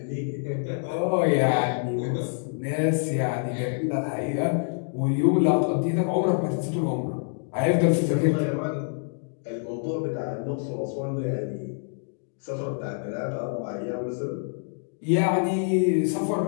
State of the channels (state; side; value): silent; right; 61 dB below the other